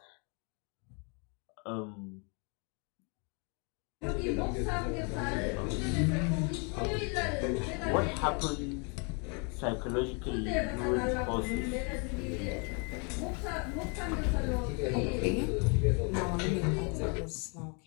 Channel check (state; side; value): quieter; right; 35.2 dB